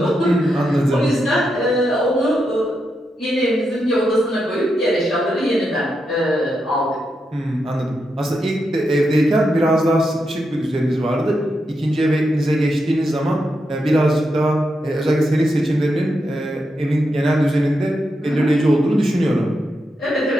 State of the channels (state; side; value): normal; both; correlation 0.85